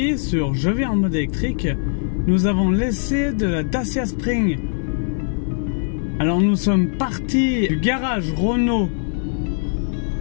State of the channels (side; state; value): right; silent; 65 dB below the other